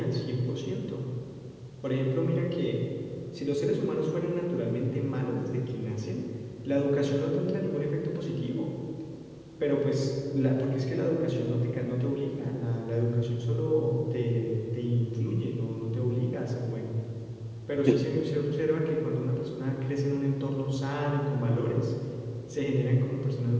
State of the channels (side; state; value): both; identical; correlation 1.00